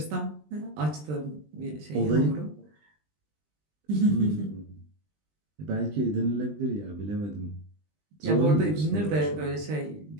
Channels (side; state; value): left; late; 20 ms